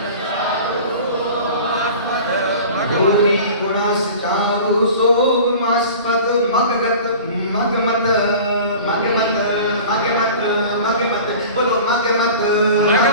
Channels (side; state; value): both; inverted; correlation -0.40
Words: भूरि गुणस्य चारु शोभमास्पद मगगत मगमत मगमत मगमत मगमत बोलो मगमत